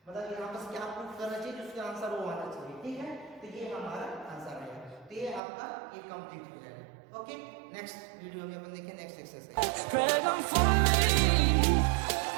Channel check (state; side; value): drops out; left; at 5.4 s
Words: मतलब यहाँ पर क्या प्रूफ करना चाहिए, उसका आंसर वो आना चाहिए, ठीक है। तो ये हमारा आंसर है, तो ये आपका ये कंप्लीट हो जाएगा, ओके। नेक्स्ट वीडियो में अपन देखें next exercise. Dragon for me.